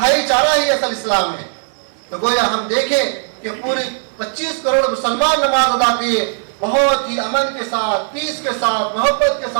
ही असल इस्लाम है। तो गोया हम देखें कि पूरे 25 करोड़ मुसलमान नमाज अदा किए, बहुत ही अमन के साथ, पीस के साथ, मोहब्बत के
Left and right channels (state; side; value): silent; left; digital silence